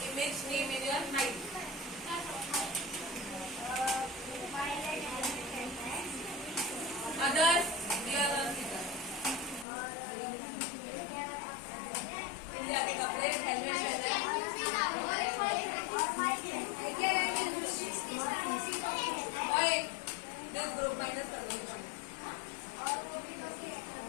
image name in your mind? Others, dear Rosita. India के कपड़े, helmet और एक this group minus कर दो.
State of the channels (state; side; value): drops out; right; at 9.7 s